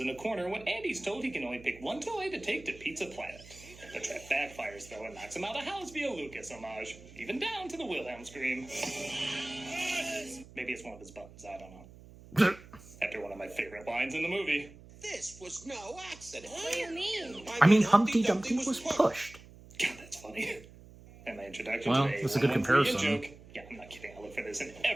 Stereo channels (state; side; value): noise; right; hum, 20 dB below the sound